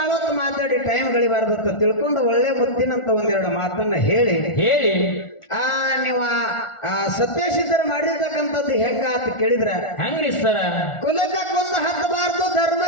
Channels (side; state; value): right; late; 1.4 ms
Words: ಹೊತ್ತು ಮಾತಾಡಿ ಟೈಮ್ ಗಳಿಬಾರ್ದತ್ತ ತಿಳ್ಕೊಂಡು ಒಳ್ಳೆ ಮುತ್ತಿನಂತ ಒಂದೆರಡು ಮಾತನ್ನ ಹೇಳಿ ನೀವು ಸತ್ಯಸಿದ್ಧರು ಮಾಡಿರ್ತಕ್ಕಂಥದ್ದು ಹೆಂಗ ಅಂತ ಕೇಳಿದ್ರ ಹೆಂಗ್ರಿ ಸರ? ಕುಲಕ್ಕೆ ಕೊಂದು ಹತ್ತಬಾರ್ದು,